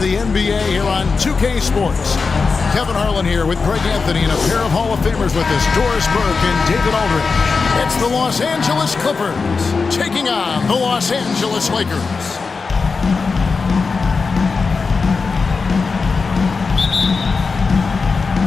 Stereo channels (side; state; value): right; quieter; 4.7 dB